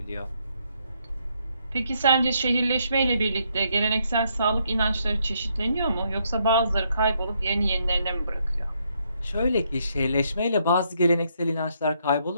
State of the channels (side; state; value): both; inverted; correlation -0.74